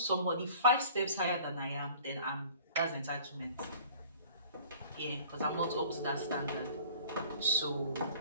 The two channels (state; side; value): inverted; both; correlation -0.48